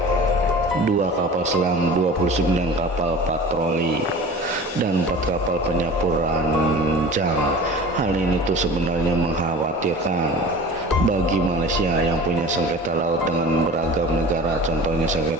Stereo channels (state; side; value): normal; both; correlation 0.39